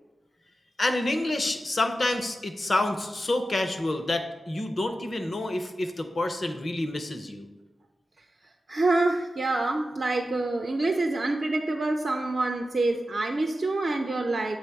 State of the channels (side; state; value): both; normal; correlation 0.92